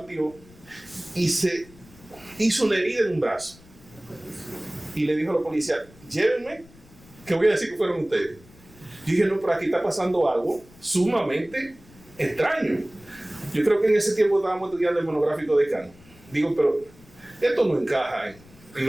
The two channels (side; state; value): left; noise; rumble, 24 dB below the sound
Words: y se hizo una herida en un brazo y le dijo a los policías, llévenme, que voy a decir que fueron ustedes. Yo dije, no, pero aquí está pasando algo sumamente extraño. Yo creo que en ese tiempo estábamos estudiando el monográfico de Kant. Digo, pero esto no encaja en